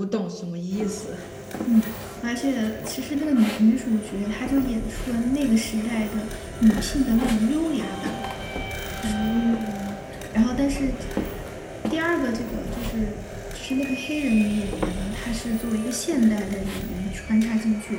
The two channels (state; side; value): identical; both; correlation 1.00